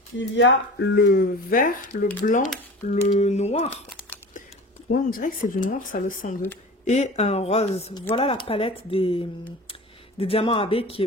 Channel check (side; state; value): both; normal; correlation 0.37